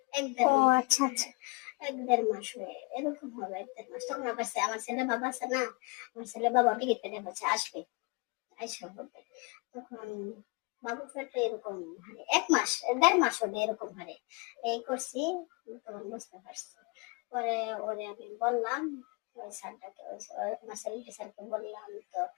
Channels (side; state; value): right; quieter; 30.2 dB